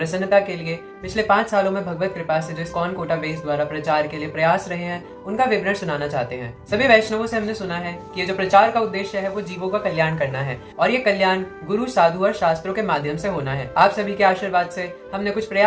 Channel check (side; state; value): both; identical; correlation 1.00